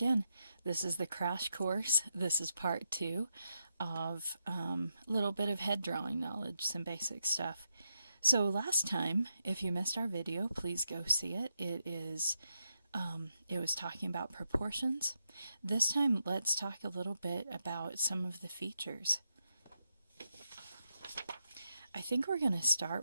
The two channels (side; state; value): both; inverted; correlation -0.84